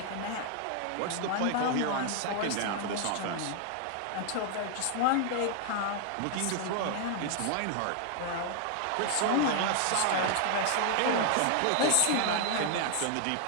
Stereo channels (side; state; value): both; different; correlation 0.00